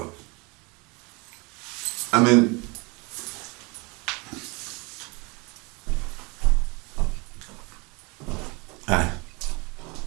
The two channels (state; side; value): quieter; left; 28.3 dB